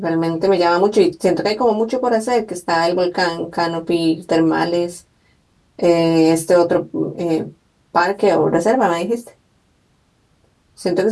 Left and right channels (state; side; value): identical; both; correlation 1.00